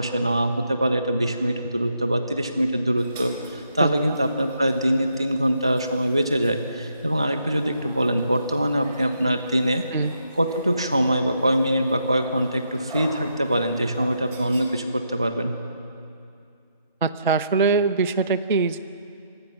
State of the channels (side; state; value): both; inverted; correlation -0.77